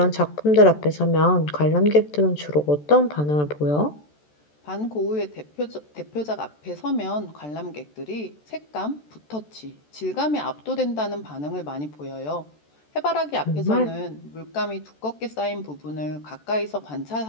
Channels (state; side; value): late; right; 14 ms